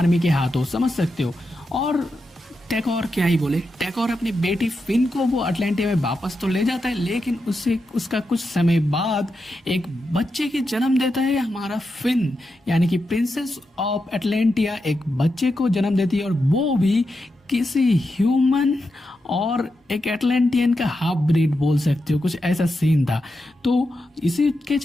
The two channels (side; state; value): both; normal; correlation 0.87